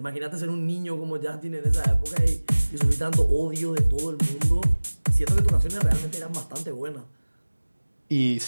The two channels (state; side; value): inverted; both; correlation -1.00